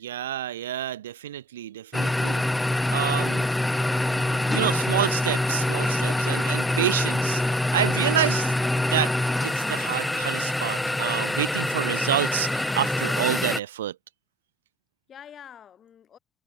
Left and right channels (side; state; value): both; normal; correlation 0.52